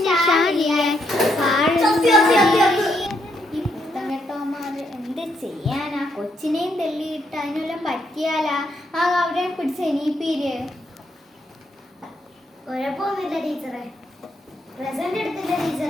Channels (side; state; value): both; normal; correlation 0.76